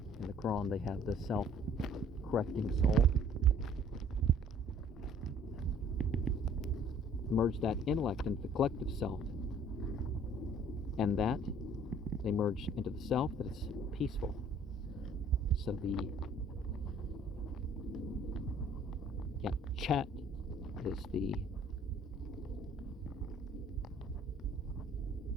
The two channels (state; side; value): normal; both; correlation 0.55